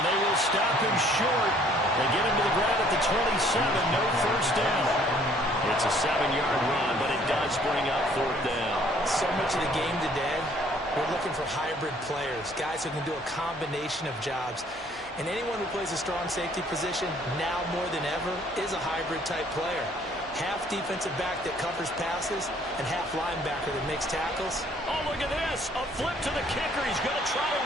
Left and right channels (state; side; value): normal; both; correlation 0.60